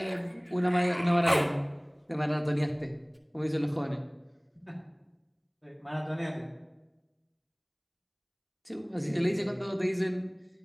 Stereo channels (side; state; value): both; identical; correlation 1.00